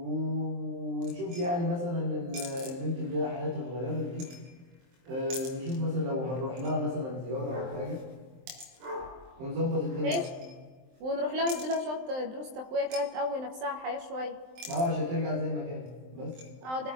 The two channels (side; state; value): left; late; 23 ms